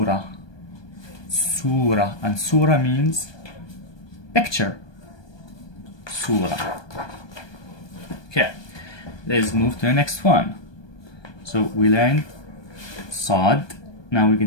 surah, and surah means picture. Surah. Okay. Let's move to the next one. So we learned sod. Now we're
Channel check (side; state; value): right; late; 1.2 ms